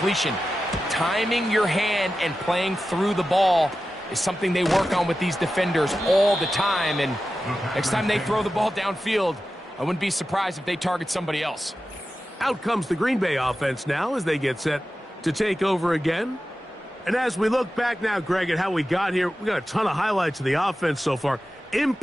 Timing your hand and playing through the ball is something they work on with these defenders all the time. And next time they throw the ball downfield, I wouldn't be surprised if they target somebody else. Out comes the Green Bay offense now as they get set to take over again. And as we look back now, Greg, at how we got here, we got a ton of highlights of the offense so far. In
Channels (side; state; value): both; normal; correlation 0.93